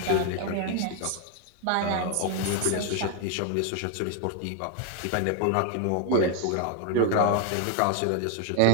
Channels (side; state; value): both; different; correlation 0.01